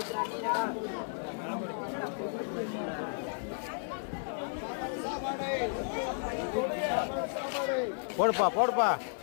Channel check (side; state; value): right; silent; digital silence